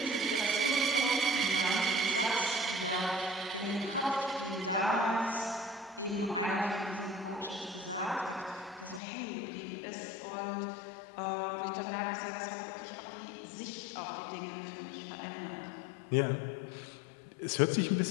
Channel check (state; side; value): drops out; right; at 9.0 s